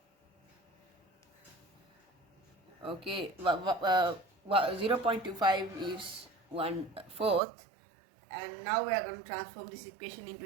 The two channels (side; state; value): left; drops out; at 7.4 s